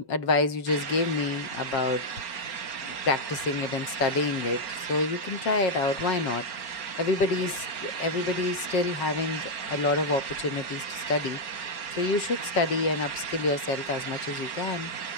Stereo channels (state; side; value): late; right; 5.5 ms